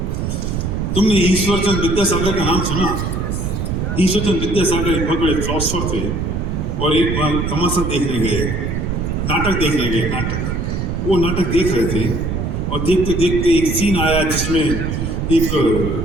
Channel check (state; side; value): noise; right; rumble, 1 dB below the sound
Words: तुमने ईश्वरचंद विद्यासागर का नाम सुना? ईश्वरचंद विद्यासागर एक बहुत बड़े फिलोसफर थे और एक बार तमाशा देखने गए, नाटक देखने गए। वो नाटक देख रहे थे और देखते देखते एक सीन आया जिसमें एक